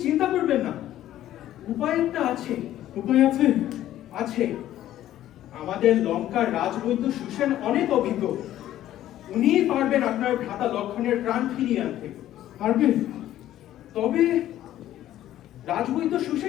চিন্তা করবেন না, উপায় একটা আছে। উপায় আছে? আছে। আমাদের লঙ্কার রাজবৈদ্য সুসেন অনেক অভিজ্ঞ। উনিই পারবেন আপনার ভ্রাতা লক্ষণের প্রাণ ফিরিয়ে আনতে। পারবে? তবে রাজবৈদ্য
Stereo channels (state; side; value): quieter; right; 12.9 dB